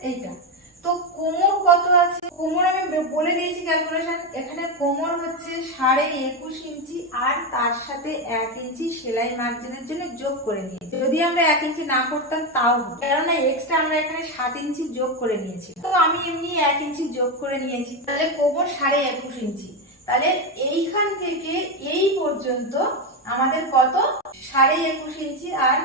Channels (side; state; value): both; normal; correlation 0.10